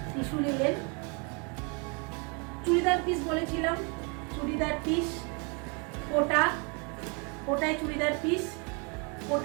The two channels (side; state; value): left; quieter; 33.8 dB